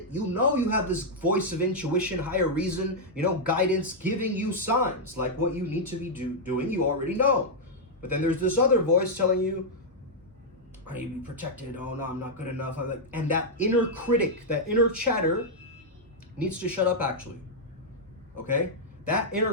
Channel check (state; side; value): normal; both; correlation -0.05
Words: You know you have this voice of intuition, higher reason, guidance, giving you signs like what you need to be doing, you already know. But then there's this other voice telling you, I need to be protected. Oh no, I'm not good enough. And that inner critic, that inner chatter needs to shut up actually. Okay? That